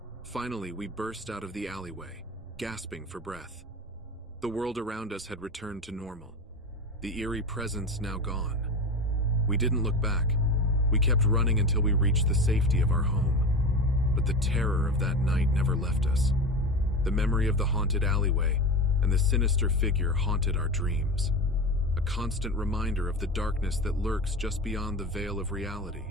Finally, we burst out of the alleyway, gasping for breath. The world around us had returned to normal, the eerie presence now gone. We didn't look back. We kept running until we reached the safety of our home. But the terror of that night never left us. The memory of the haunted alleyway and the sinister figure haunted our dreams, a constant reminder of the darkness that lurks just beyond the veil of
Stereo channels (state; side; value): normal; both; correlation 0.26